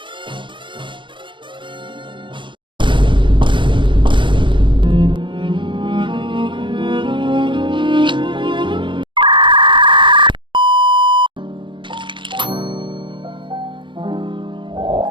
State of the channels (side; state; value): left; late; 0.23 ms